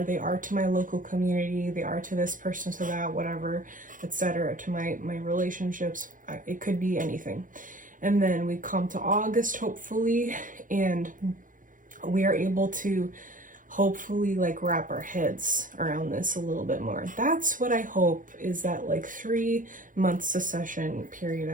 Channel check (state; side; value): late; left; 0.39 ms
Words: They are to my local community, they are to this person, to that, whatever, etc., to my relationships. It could be anything. And then we come to August, hopefully, and we are able to hopefully like wrap our heads around this a little bit more. That's what I hope, is that like 3-month succession period